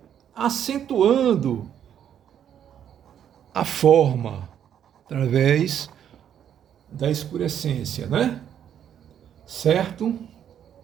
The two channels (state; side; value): quieter; left; 9.4 dB